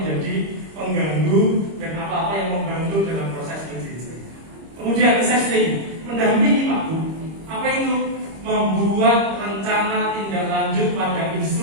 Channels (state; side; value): late; left; 25 ms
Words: pengganggu dan apa-apa yang membantu dalam proses pendidikan. Kemudian assessing, mendampingi Pak Bu. Apa itu? Membuat rencana tindak lanjut pada